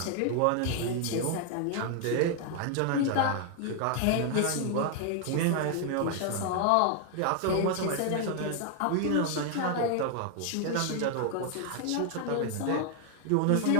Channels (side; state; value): both; different; correlation 0.00